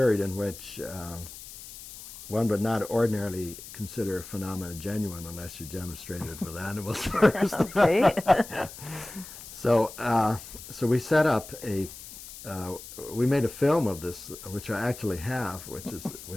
in which one would not ordinarily consider a phenomena genuine unless you demonstrated it with animals first. Okay. So, so we set up we made a film of this, which I actually have,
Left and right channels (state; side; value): noise; left; hiss, 14 dB below the sound